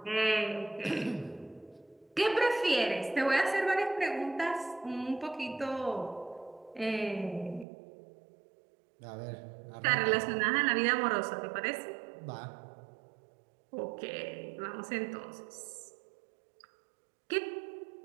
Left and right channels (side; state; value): left; drops out; at 7.7 s